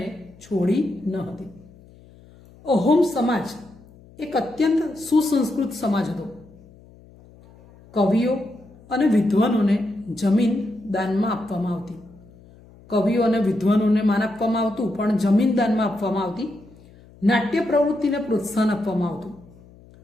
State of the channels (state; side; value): noise; left; hum, 24 dB below the sound